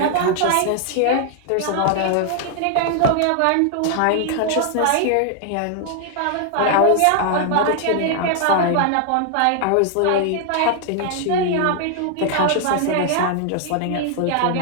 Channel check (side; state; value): both; different; correlation 0.00